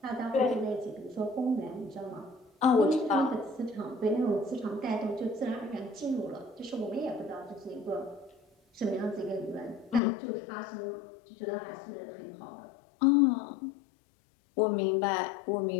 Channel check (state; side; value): drops out; right; at 10.0 s